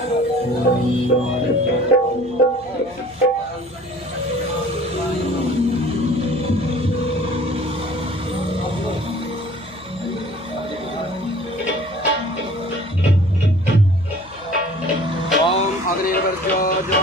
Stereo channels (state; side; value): noise; left; hum, 24 dB below the sound